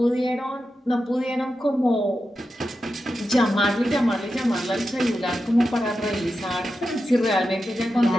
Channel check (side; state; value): both; normal; correlation 0.90